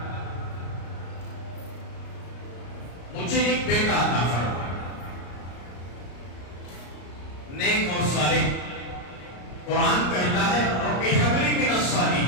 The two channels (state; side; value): late; right; 34 ms